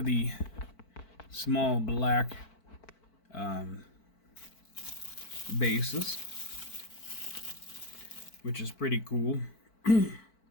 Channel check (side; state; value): right; late; 4.5 ms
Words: the small black bases, which is pretty cool.